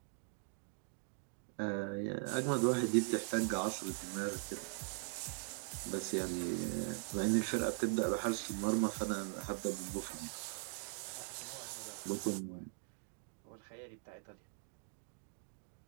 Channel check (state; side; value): silent; left; 50 dB below the other